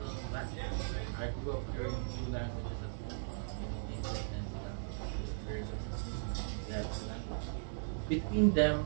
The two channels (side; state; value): left; silent; digital silence